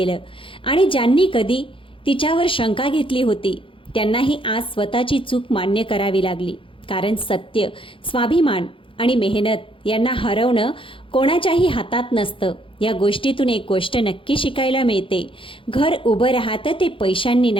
आणि ज्यांनी कधी तिच्यावर शंका घेतली होती त्यांनाही आज स्वतःची चूक मान्य करावी लागली. कारण सत्य, स्वाभिमान आणि मेहनत यांना हरवणं कोणाच्याही हातात नसतं. या गोष्टीतून एक गोष्ट नक्की शिकायला मिळते, घर उभं राहतं ते पैशांनी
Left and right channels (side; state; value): right; late; 0.25 ms